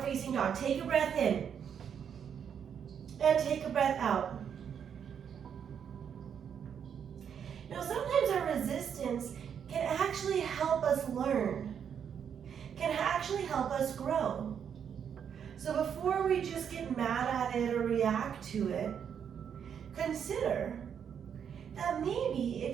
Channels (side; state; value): left; quieter; 7.9 dB